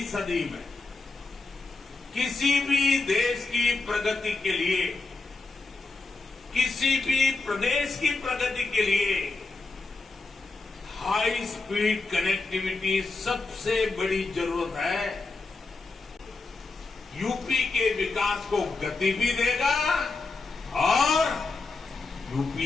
सदी में किसी भी देश की प्रगति के लिए, किसी भी प्रदेश की प्रगति के लिए हाई स्पीड कनेक्टिविटी सबसे बड़ी जरूरत है। यूपी के विकास को गति भी देगा और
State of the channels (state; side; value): quieter; right; 3.7 dB